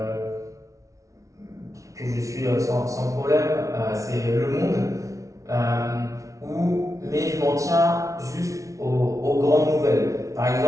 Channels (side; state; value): left; late; 0.15 ms